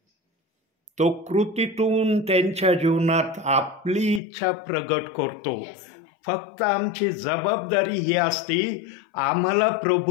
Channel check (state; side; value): drops out; right; at 4.2 s